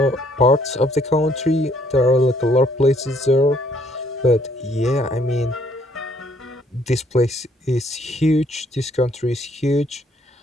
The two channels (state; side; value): normal; both; correlation 0.66